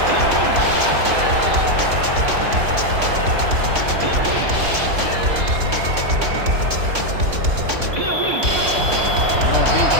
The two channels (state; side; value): late; left; 3.6 ms